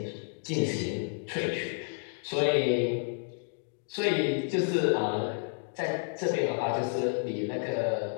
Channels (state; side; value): silent; right; 57 dB below the other